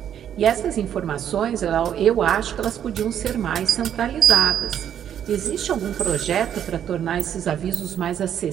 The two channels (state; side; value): quieter; left; 9.6 dB